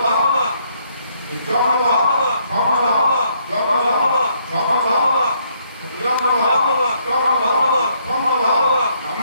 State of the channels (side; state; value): both; inverted; correlation -0.70